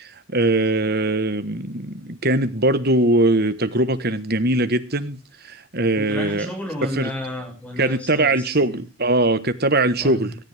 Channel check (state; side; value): normal; both; correlation 0.22